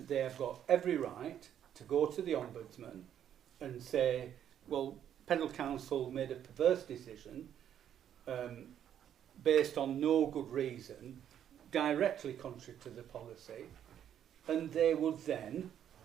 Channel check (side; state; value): left; quieter; 9.8 dB